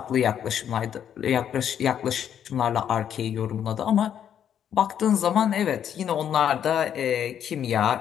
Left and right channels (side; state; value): right; quieter; 9.3 dB